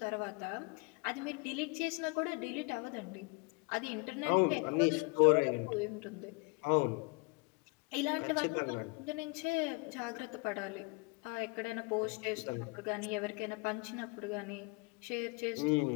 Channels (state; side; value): quieter; right; 29.8 dB